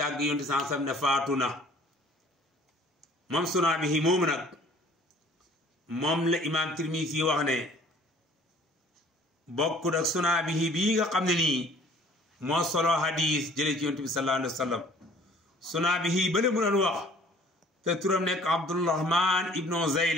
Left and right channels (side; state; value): both; normal; correlation 0.53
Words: yonent sansam ne faatu na moom Sunaabihi moomu nag moom la imaam Tirmisi wax ne bokkut ak Sunaabihi bii nga xam ne nii moo solo hadis jëlee ci yonent bi sallallahu alayhi wa sallam Sunaabihi bale mu doon wax te turam nekk Abdurahman ibnu